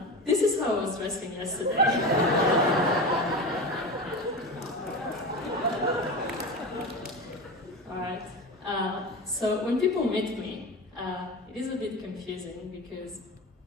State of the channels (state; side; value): normal; both; correlation 0.26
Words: This is how I was dressing yesterday. Alright, so when people meet me, it is a bit confusing because,